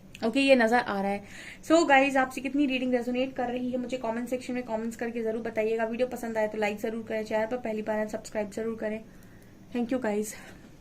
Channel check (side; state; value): both; identical; correlation 1.00